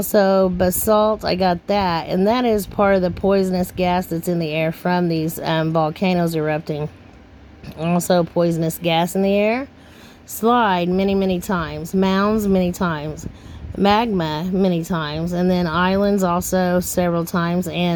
basalt, I got that, and that is part of the poisonous gas that's in the air from these volcanoes erupting. Also poisonous gas in the air. Slide many times, mounds many times, magma many times, and then islands also several times,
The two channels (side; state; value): both; identical; correlation 1.00